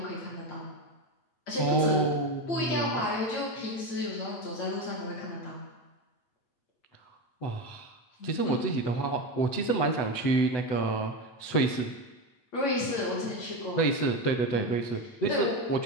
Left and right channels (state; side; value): late; right; 8.6 ms